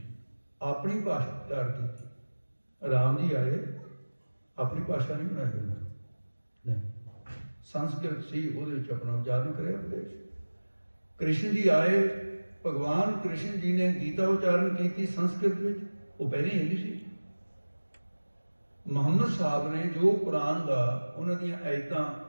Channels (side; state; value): both; inverted; correlation -1.00